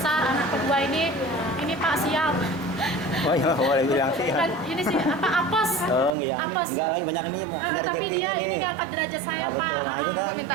anak kedua ini Pak siap. Oh iya, boleh bilang sih. Dan ini sih apa apes? Oh, enggak, Apes. enggak lagi banyak nih, ada Tapi rezeki dia ini ini. ngangkat derajat saya, Nah, Pak. betul. Nah, itu kan.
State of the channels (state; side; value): drops out; left; at 6.1 s